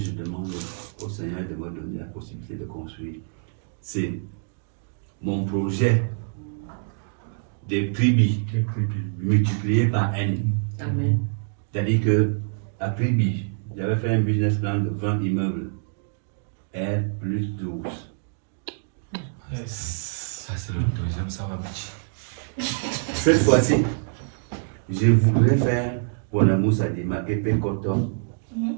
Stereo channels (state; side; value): silent; left; digital silence